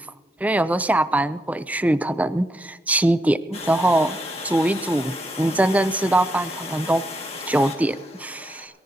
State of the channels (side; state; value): both; normal; correlation 0.80